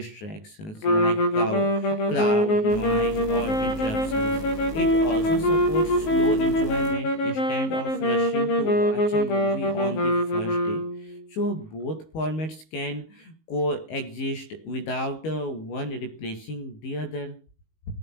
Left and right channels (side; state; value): right; late; 19 ms